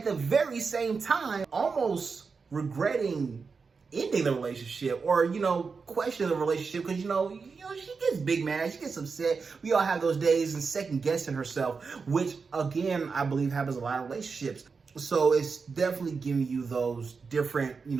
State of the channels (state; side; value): quieter; left; 5.0 dB